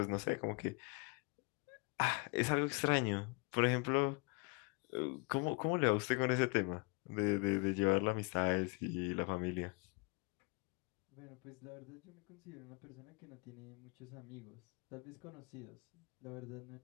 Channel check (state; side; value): quieter; right; 31.1 dB